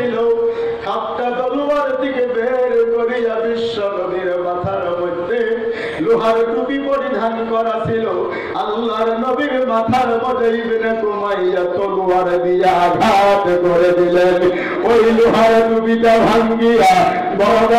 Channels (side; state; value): both; identical; correlation 1.00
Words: খাপটা তলোয়ার থেকে বের করিয়া বিশ্ব নবীর মাথার মধ্যে লোহার টুপি পরিধান করা ছিল। আল্লাহর নবীর মাথার মধ্যে ইবনে কুমাইয়া তলোয়ার দিয়ে আঘাত করে দিলেন। ওই লোহার টুপিটা ভাঙ্গিয়া বড়